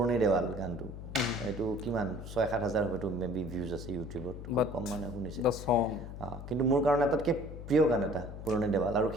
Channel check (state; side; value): noise; left; hum, 10 dB below the sound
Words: দেৱাল গানটো এইটো কিমান 6-7 হাজাৰ হয়তো মেবি ভিউজ আছে ইউটিউবত কম মানুহে শুনিছে কিন্তু মোৰ কাৰণে আটাইতকৈ প্ৰিয় গান এটা পুৰণি দেৱাল আৰু